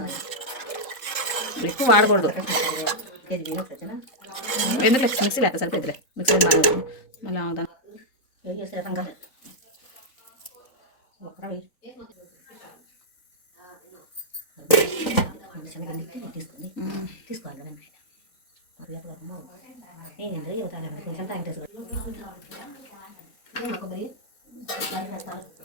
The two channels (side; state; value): right; late; 3.8 ms